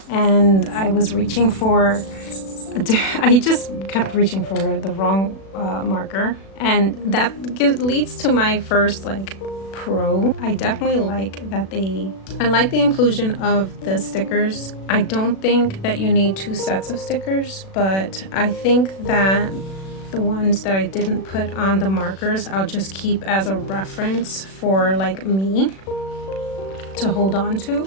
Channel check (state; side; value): late; right; 36 ms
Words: And I was reaching for I just kept reaching for the wrong marker, and that leads to my first like pro. I definitely like that I like the inclusion of the stickers. I don't think that you need 2 sets of stickers, but I think that the ones that I didn't put on the markers, I'll just keep as a reference for like me to hold on to.